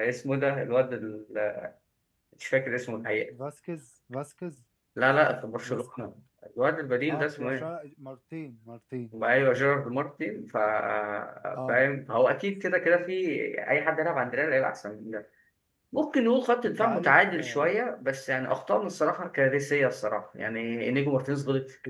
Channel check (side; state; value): both; identical; correlation 1.00